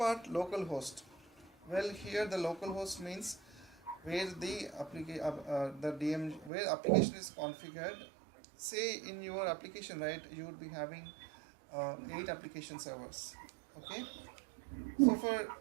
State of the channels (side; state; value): left; drops out; at 6.5 s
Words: localhost. Well, here the localhost means where the DM where application is configured. Say in your application, right, you would be having 8 application servers. Okay. So for